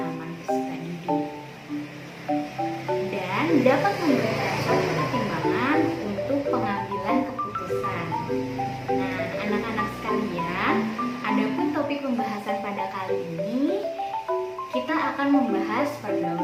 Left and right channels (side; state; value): both; identical; correlation 1.00